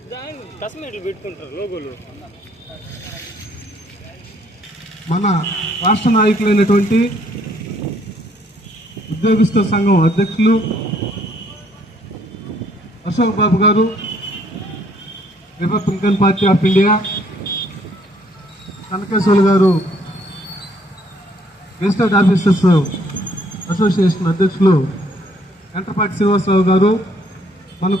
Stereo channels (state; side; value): normal; both; correlation 0.65